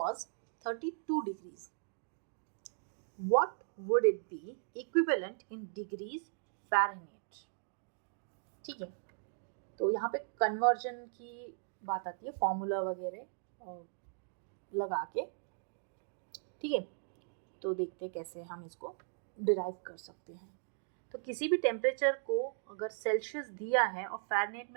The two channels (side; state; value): left; silent; digital silence